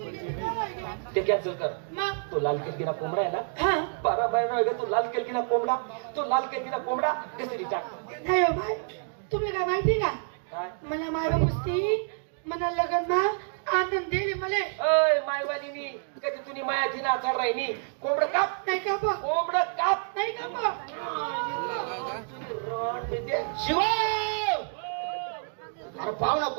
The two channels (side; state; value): left; silent; 59 dB below the other